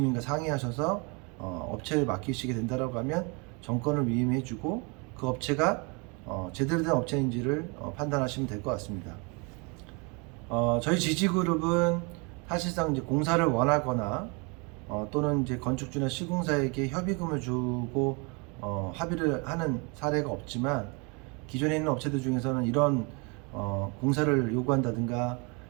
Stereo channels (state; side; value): quieter; left; 31.4 dB